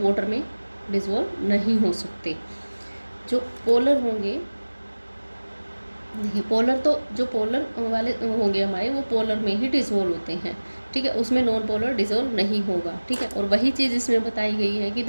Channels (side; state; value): both; inverted; correlation -1.00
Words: वाटर में डिजोल्व नहीं हो सकते. जो पोलर होंगे, पोलर तो जो पोलर वाले होंगे हमारे वो पोलर में ही डिजोल्व होते हैं, ठीक है. उसमें नॉन पोलर डिजोल्व नहीं होगा, ठीक है. और वही चीज़ इसमें बताई गई है कि